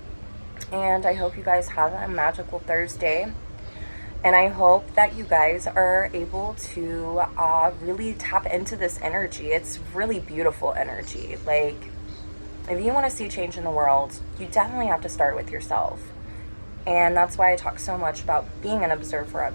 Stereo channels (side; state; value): both; inverted; correlation -1.00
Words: And I hope you guys have a magical Thursday. And I hope that you guys are able to really tap into this energy. It's really beautiful energy. Like, if you want to see change in the world, you definitely have to start with yourself. And that's why I talk so much about being an observer